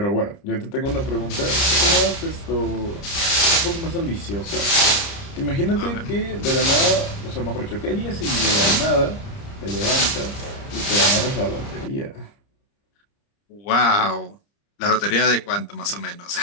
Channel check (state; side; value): late; right; 30 ms